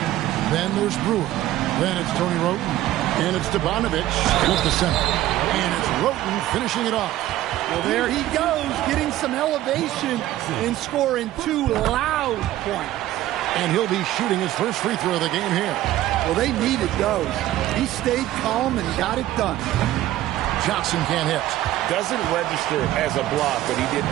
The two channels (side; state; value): left; quieter; 14.4 dB